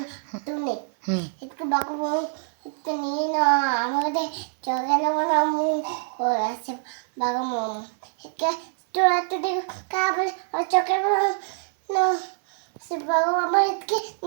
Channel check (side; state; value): left; silent; digital silence